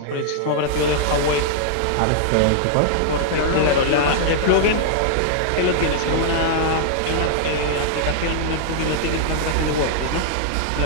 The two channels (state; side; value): different; both; correlation -0.01